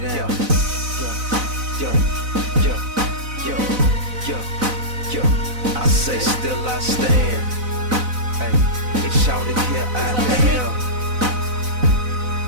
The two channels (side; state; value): left; late; 4.0 ms